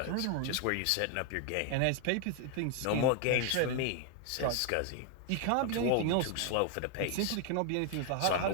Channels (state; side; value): different; both; correlation 0.00